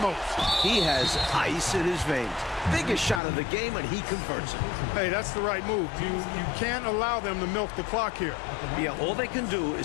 He has ice in his veins. Biggest shot of the game, and he converts it. Hey, that's the right move. You can't allow them to milk the clock here. Yeah, all they can do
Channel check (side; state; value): right; drops out; at 3.2 s